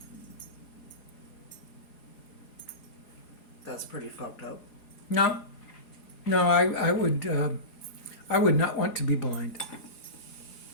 That's pretty fucked up. No, I would not want to be blind.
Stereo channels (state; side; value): late; right; 4.8 ms